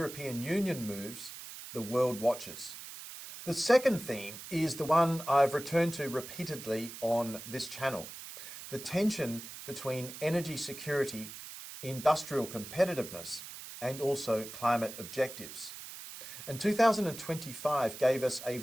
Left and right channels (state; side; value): noise; right; hiss, 12 dB below the sound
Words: Union moves, the world watches. The second theme is the one I've returned to repeatedly on this channel: the tension between energy security, industrial competitiveness, and also climate objectives. And 2025 gave us a